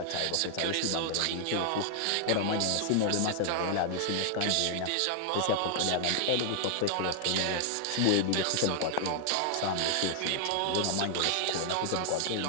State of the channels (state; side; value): different; both; correlation 0.00